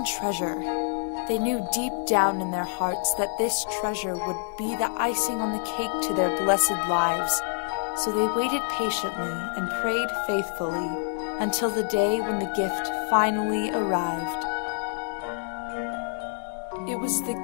treasure. They knew deep down in their hearts that this treasure would be the icing on the cake to their blessed lives, so they waited patiently and prayed faithfully until the day when the gift finally arrived. It was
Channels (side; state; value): right; silent; digital silence